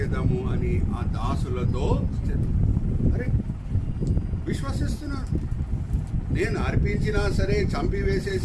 అని ఆ దాసులతో అరే విశ్వసిస్తున్నాడు. నేను అర్పించినా సరే,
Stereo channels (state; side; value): identical; both; correlation 1.00